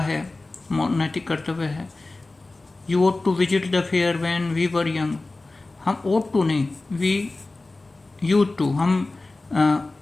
है, नैतिक कर्तव्य है। You ought to visit the fair when we were young. हम ought टू नहीं, वी यूज टू, हम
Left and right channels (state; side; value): quieter; right; 3.2 dB